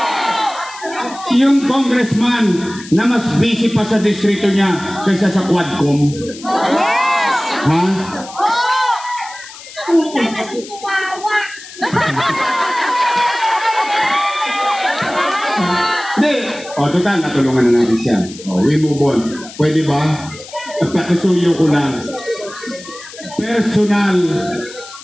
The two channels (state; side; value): noise; left; hiss, 16 dB below the sound